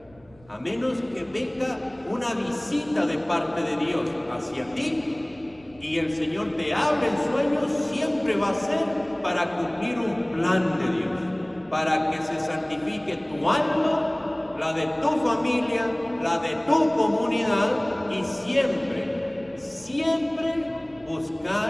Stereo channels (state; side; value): noise; right; rumble, 27 dB below the sound